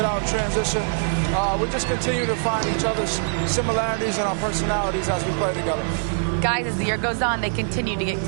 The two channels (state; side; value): silent; left; digital silence